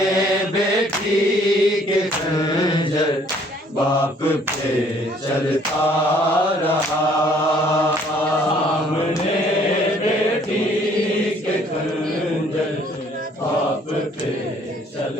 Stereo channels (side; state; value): both; normal; correlation 0.60